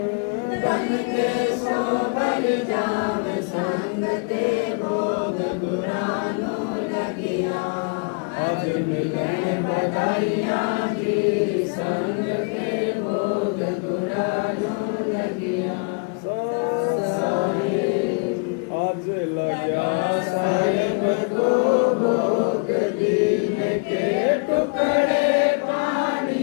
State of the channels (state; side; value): quieter; right; 34.7 dB